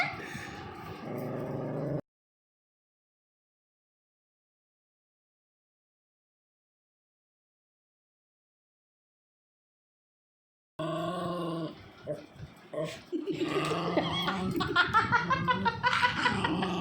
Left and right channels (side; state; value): both; identical; correlation 1.00